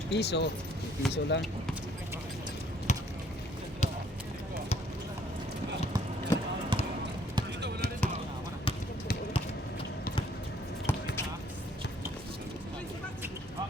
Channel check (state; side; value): normal; both; correlation 0.63